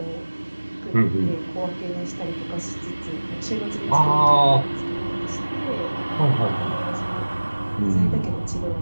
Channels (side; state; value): both; inverted; correlation -1.00